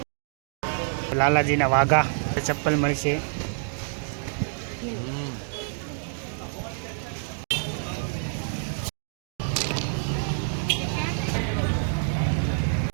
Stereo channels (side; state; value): left; silent; digital silence